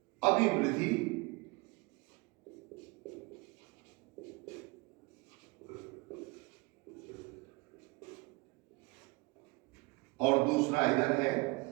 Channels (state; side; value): quieter; left; 25.4 dB